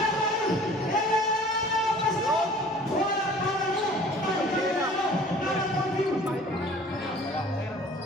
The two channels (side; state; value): both; normal; correlation 0.49